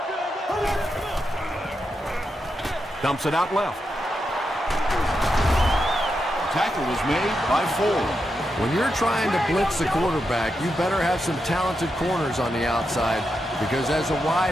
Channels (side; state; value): both; normal; correlation 0.86